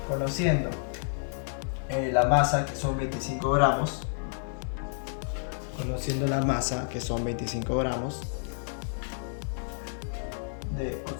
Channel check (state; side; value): silent; right; digital silence